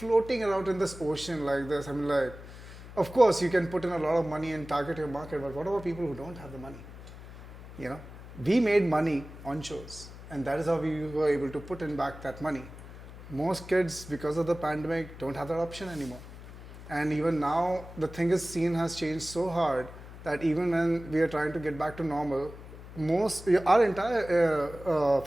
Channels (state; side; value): noise; left; hum, 15 dB below the sound